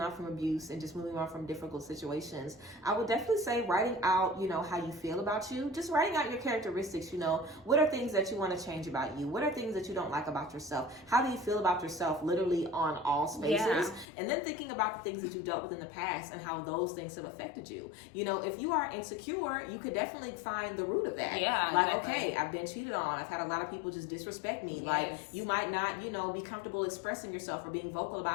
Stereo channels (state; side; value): drops out; right; at 14.1 s